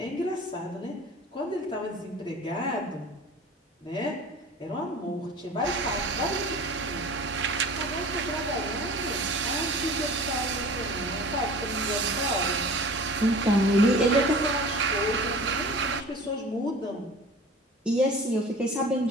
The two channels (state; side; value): normal; both; correlation 0.41